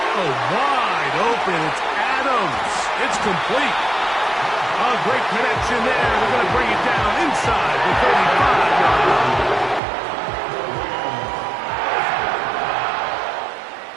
Oh, wide open. It's Adams. It's complete. A great connection there. They're going to bring it down inside the 35-yard line.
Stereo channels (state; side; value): drops out; left; at 9.8 s